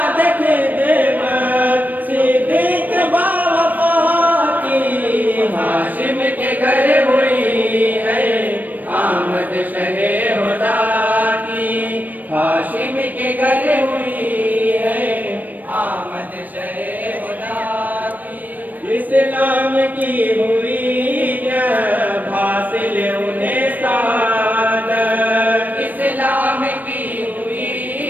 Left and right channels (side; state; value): left; late; 0.084 ms